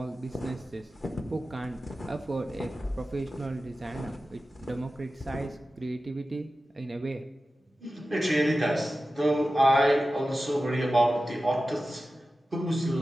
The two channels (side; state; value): both; normal; correlation 0.94